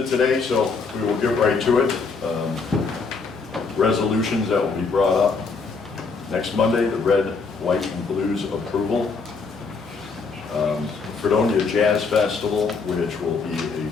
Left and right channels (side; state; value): right; quieter; 4.6 dB